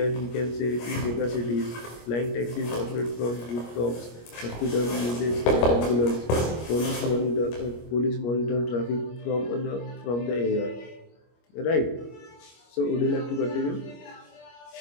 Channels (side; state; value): right; late; 25 ms